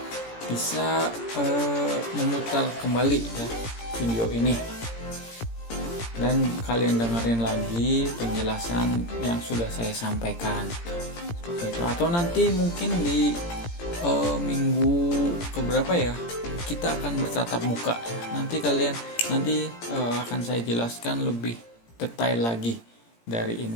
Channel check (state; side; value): late; right; 17 ms